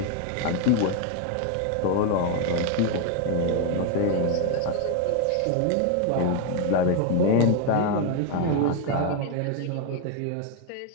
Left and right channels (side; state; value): both; different; correlation 0.01